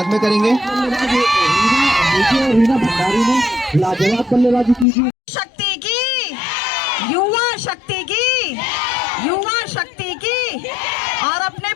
में करेंगे। शक्ति की, युवा शक्ति की, युवा शक्ति की और अपने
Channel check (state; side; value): drops out; right; at 4.9 s